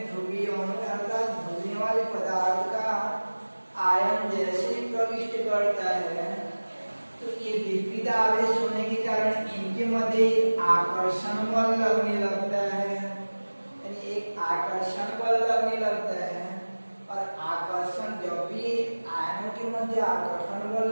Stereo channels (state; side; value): inverted; both; correlation -1.00